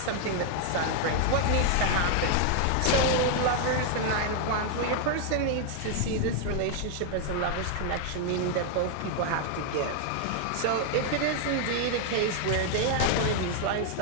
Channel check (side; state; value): both; different; correlation 0.00